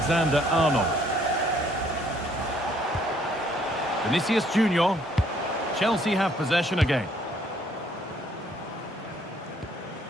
Vinicius Junior. Chelsea have possession again.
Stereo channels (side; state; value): both; normal; correlation 0.64